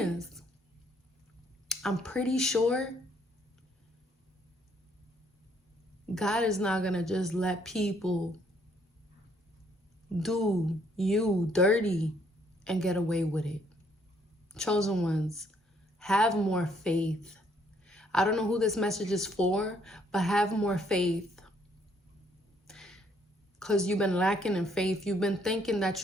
I'm pretty sure God is not gonna just let people do you dirty and get away with it. Chosen ones, have more faith. I don't know who this message is for, but have more faith. Because you've been lacking in faith. You've been thinking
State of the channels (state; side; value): normal; both; correlation 0.68